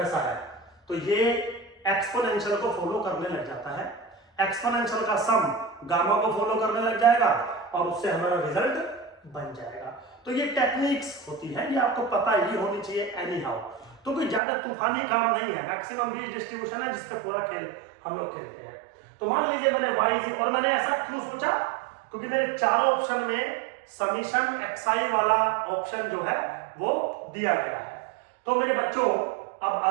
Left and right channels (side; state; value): left; drops out; at 14.4 s